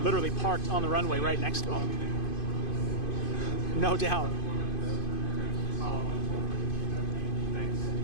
literally parked on the runway right next to them. No doubt.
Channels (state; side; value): late; right; 2.5 ms